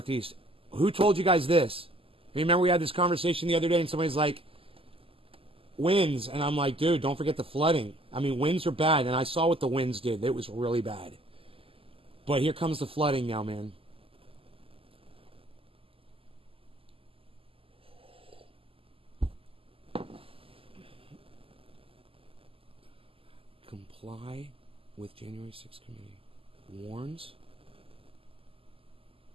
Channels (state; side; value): late; left; 0.26 ms